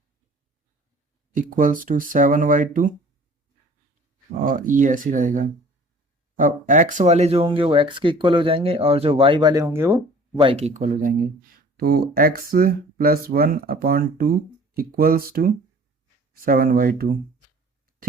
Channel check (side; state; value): both; normal; correlation 0.49